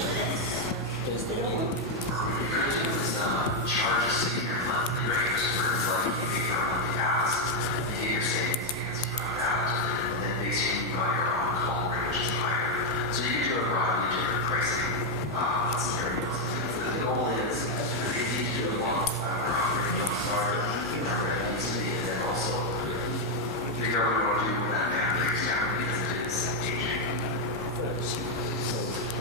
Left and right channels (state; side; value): normal; both; correlation 0.02